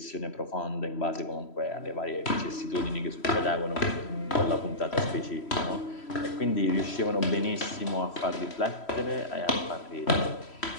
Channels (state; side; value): late; right; 3.1 ms